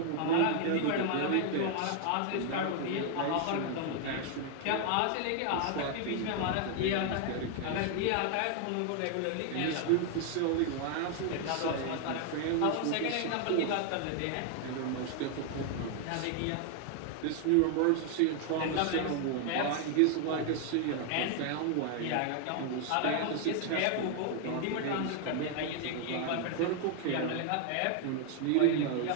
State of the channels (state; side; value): different; both; correlation 0.00